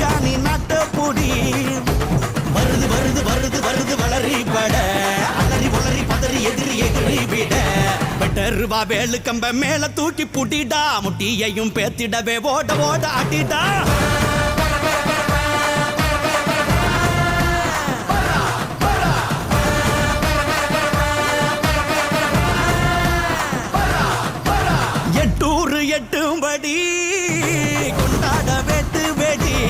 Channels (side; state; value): both; identical; correlation 1.00